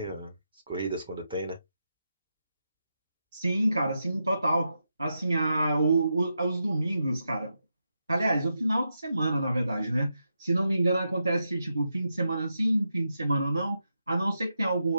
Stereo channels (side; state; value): both; inverted; correlation -0.86